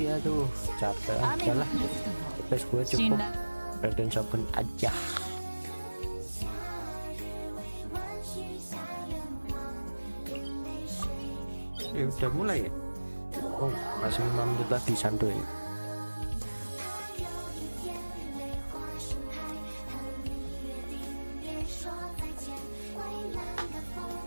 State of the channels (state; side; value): inverted; both; correlation -1.00